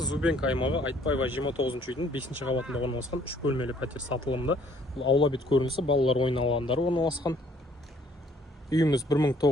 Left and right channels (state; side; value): normal; both; correlation 0.61